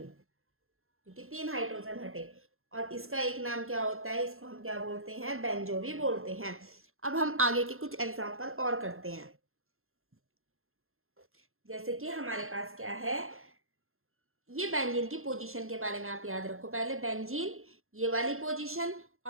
क्योंकि 3 हाइड्रोजन हटे। और इसका एक नाम क्या होता है, इसको हम क्या बोलते हैं, बेंजो भी बोलते हैं। अब हम आगे के कुछ एग्जाम्पल और करते हैं। जैसे कि हमारे पास क्या है, ये बेंजीन की पोजीशन के बारे में आप याद रखो। पहले बेंजीन, ये वाली पोजीशन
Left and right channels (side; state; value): left; late; 0.61 ms